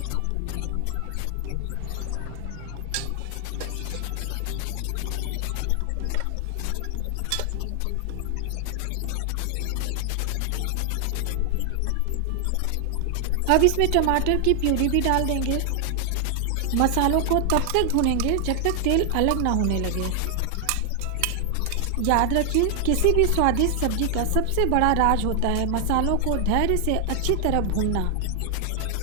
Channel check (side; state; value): both; different; correlation 0.00